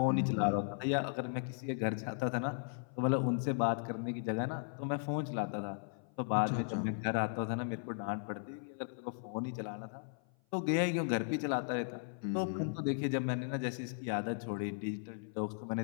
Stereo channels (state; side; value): silent; right; 53 dB below the other